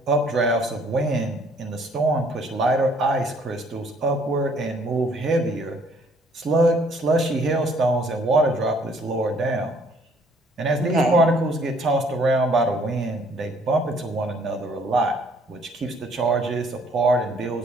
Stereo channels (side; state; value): both; normal; correlation 0.61